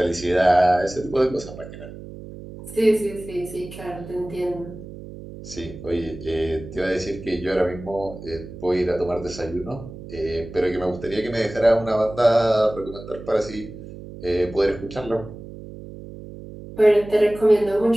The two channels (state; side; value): noise; right; hum, 14 dB below the sound